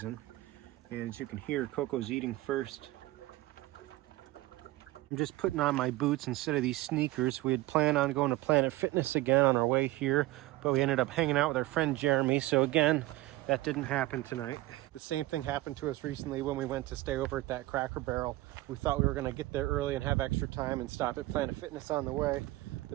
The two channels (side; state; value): left; quieter; 18.2 dB